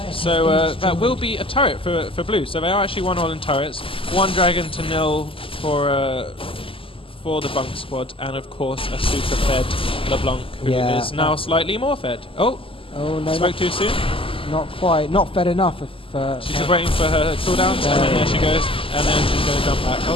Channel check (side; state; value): right; late; 0.26 ms